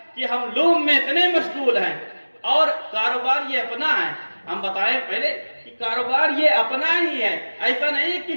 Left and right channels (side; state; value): both; inverted; correlation -1.00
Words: کہ ہم لوم میں اتنے مشغول ہیں، اور کاروبار یہ اپنا ہے۔ ہم بتائیں پہلے کہ کاروبار یہ اپنا ہی ہے، ایسا نہیں